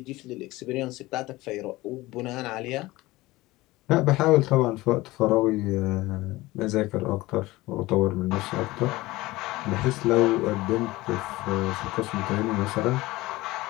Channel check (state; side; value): quieter; right; 19.4 dB